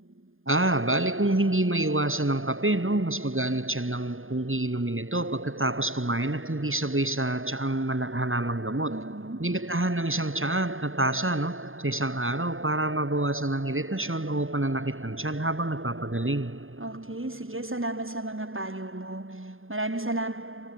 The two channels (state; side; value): late; left; 0.59 ms